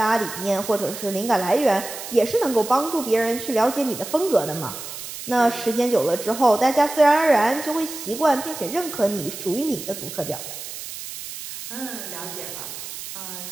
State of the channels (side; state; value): right; noise; hiss, 10 dB below the sound